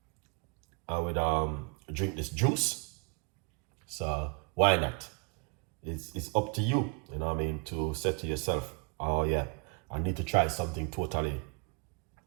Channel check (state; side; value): quieter; left; 33.8 dB